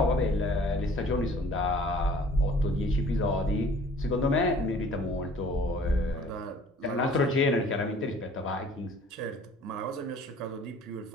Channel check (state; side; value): normal; both; correlation 0.52